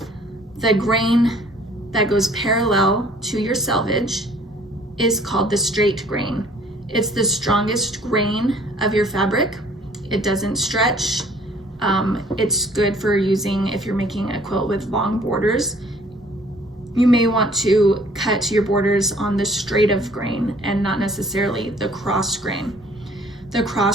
The grain that goes parallel to your selvage is called the straight grain. It's the strongest grain of your fabric. It doesn't stretch. It's good for using if you're making a quilt with long borders. You may want to cut your borders on the straight of grain and not necessarily the cross grain. The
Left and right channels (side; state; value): both; normal; correlation 0.57